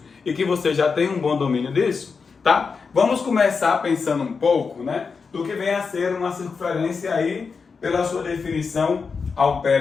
e que você já tem um bom domínio disso, tá? Vamos começar pensando um pouco, né, do que vem a ser uma circunferência aí pela sua definição ao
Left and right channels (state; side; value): quieter; right; 5.2 dB